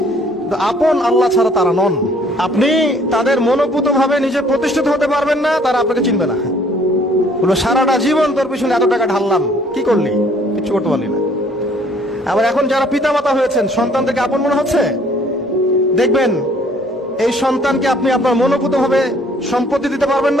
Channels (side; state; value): both; normal; correlation 0.59